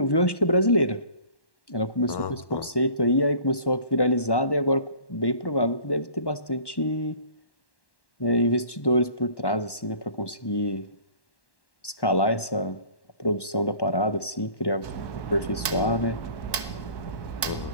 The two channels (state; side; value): late; right; 1.1 ms